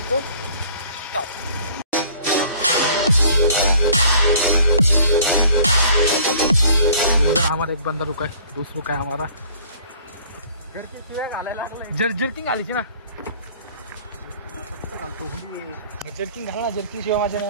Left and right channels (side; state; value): both; inverted; correlation -0.53